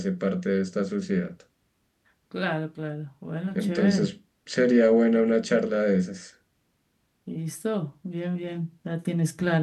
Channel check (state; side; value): identical; both; correlation 1.00